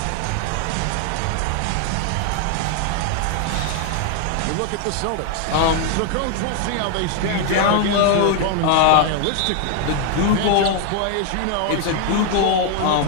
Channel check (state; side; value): different; both; correlation 0.00